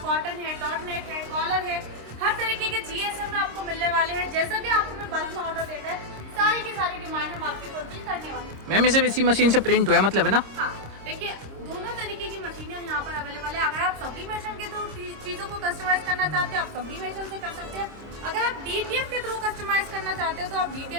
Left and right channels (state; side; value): late; left; 26 ms